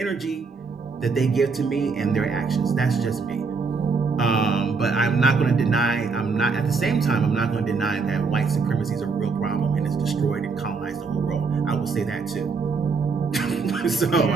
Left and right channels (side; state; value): left; quieter; 4.7 dB